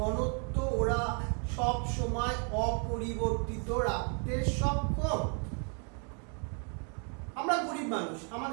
ওরা সব সময় অপরিবর্তিত রাখতে সক্ষম। আমরা গরিব মানুষ,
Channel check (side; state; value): left; quieter; 39.6 dB